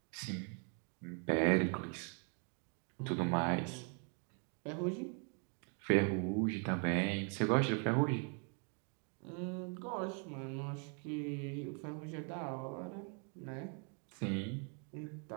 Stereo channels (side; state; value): left; quieter; 39.8 dB